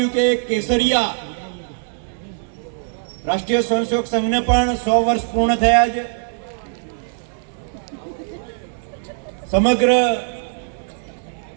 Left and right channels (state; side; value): silent; left; digital silence